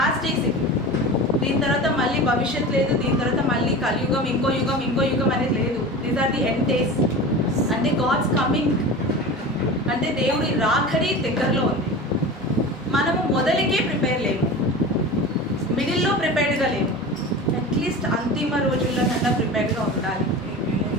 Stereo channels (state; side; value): normal; both; correlation 0.32